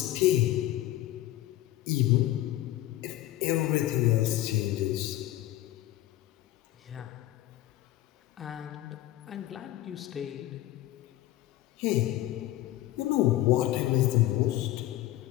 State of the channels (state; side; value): quieter; right; 15.0 dB